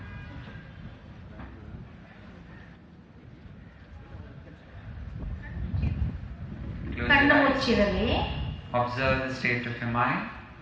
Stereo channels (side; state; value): both; identical; correlation 1.00